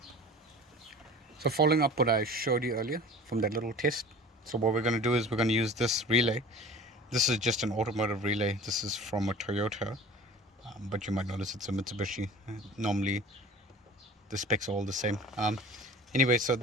So following up what I showed you earlier from that little test, so what we're going to do is we're going to use this relay. This is just an automotive relay. This is from a Toyota, but you might notice it's a Mitsubishi. Normally the specs are all the same. Anyway, so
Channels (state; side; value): normal; both; correlation 0.41